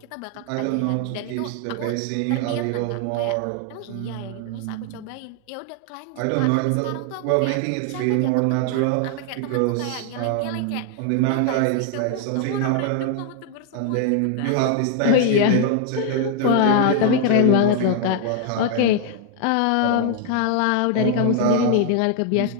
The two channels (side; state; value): both; different; correlation 0.00